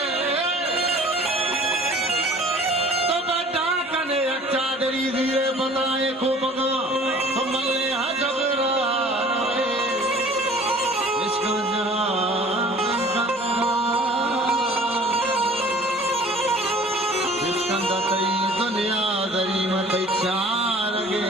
तो बच्चा कने अच्छा दरी धीरे बताए को बगा तो मल्ले हजबरा दुनिया दरी मत चार गे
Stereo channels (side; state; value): both; normal; correlation 0.49